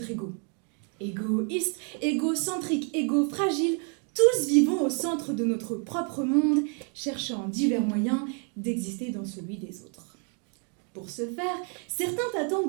ego. Égoïste, égocentrique, égo fragile, tous vivons au centre de notre propre monde, cherchant divers moyens d'exister dans celui des autres. Pour ce faire, certains attendent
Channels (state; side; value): quieter; left; 38.8 dB